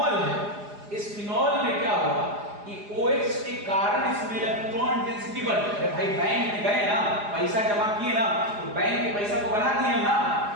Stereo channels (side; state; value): left; late; 4.9 ms